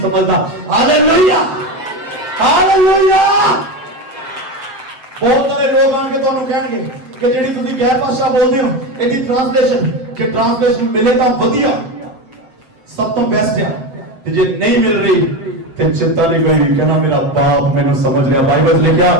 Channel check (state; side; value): late; left; 7.7 ms